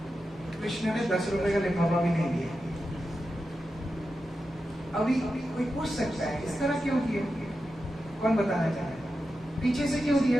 कृष्ण ने 10 रुपए का लिफाफा भी नहीं दिया। अभी कोई पूछ सकता है इस तरह क्यों किया? कौन बताना चाहे? पीछे से क्यों दिया?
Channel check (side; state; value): both; normal; correlation 0.90